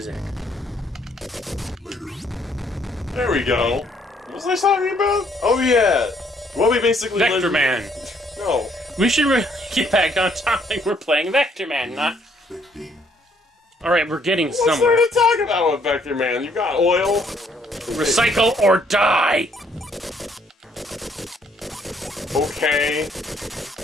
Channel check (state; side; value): normal; both; correlation 0.67